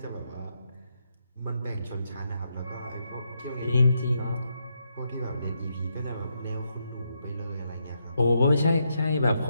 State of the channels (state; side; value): inverted; both; correlation -0.81